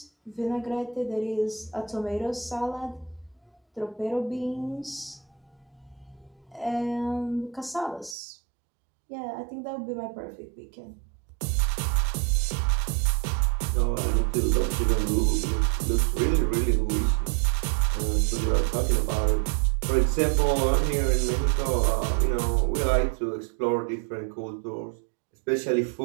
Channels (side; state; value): left; drops out; at 8.2 s